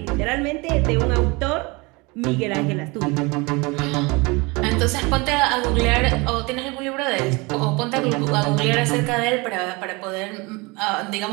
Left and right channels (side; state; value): left; quieter; 26.1 dB